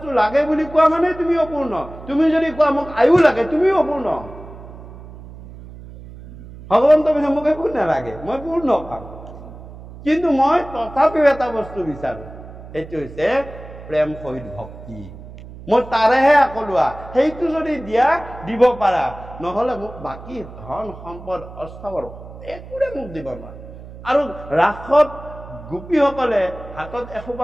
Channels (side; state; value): right; noise; hum, 16 dB below the sound